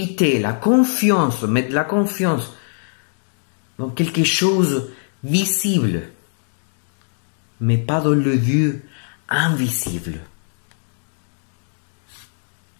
la confiance, mettre la confiance dans quelque chose visible, mais pas dans le Dieu invisible.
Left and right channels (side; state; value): right; silent; digital silence